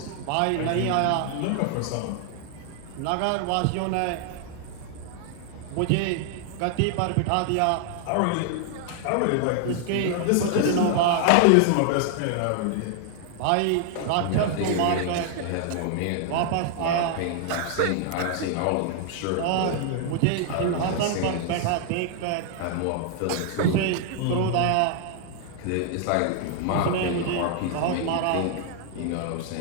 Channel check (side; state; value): both; different; correlation 0.00